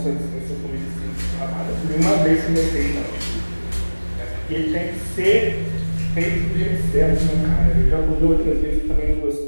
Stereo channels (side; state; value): both; inverted; correlation -1.00